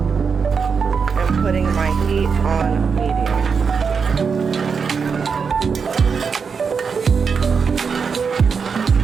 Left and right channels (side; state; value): left; quieter; 5.8 dB